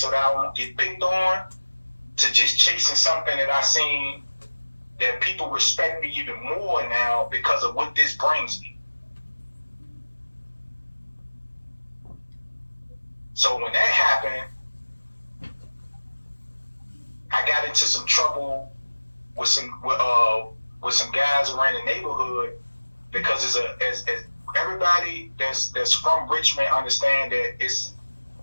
that I won't get picked on, to just chasing something that I seen that people respect me even more now because of what this brings me. So when that happened, I got into some trouble with some guys around the neighborhood because as everybody that's from Richmond understand that it's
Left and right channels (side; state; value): both; inverted; correlation -1.00